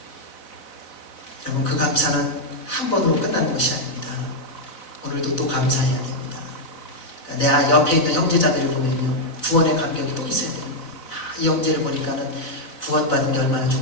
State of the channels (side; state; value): right; late; 4.0 ms